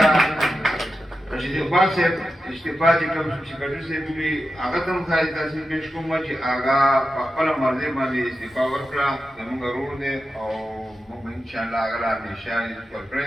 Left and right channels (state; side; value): normal; both; correlation 0.91